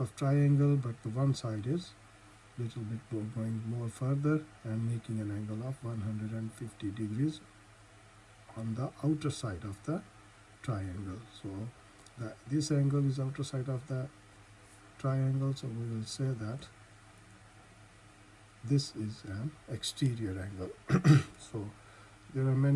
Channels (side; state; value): both; identical; correlation 1.00